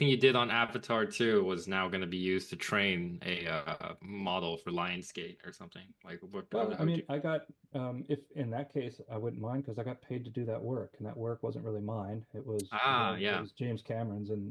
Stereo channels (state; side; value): identical; both; correlation 1.00